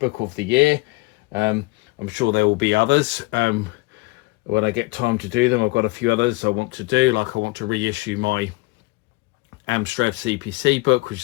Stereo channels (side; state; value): right; quieter; 23.6 dB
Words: of the year. I'm sure there will be others when I get time to do them. I've got a few others I want to do, like I want to reissue my Amstrad CPC book, which